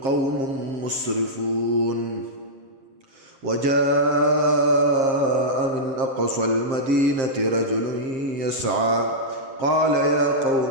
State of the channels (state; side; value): late; left; 7.6 ms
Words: قوم مسرفون وجاء من أقصى المدينة رجل يسعى قال يا